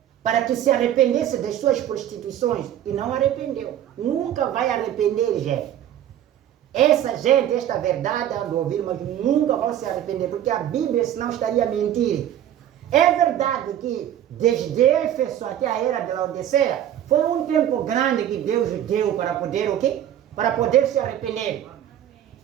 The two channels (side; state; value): left; quieter; 11.2 dB